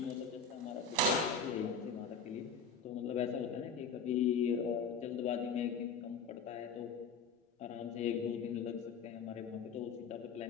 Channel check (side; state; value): right; quieter; 4.9 dB